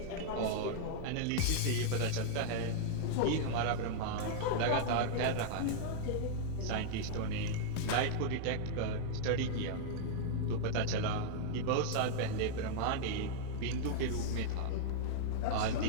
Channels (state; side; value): different; both; correlation -0.01